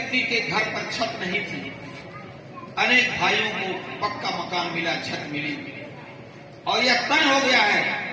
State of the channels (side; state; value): both; identical; correlation 1.00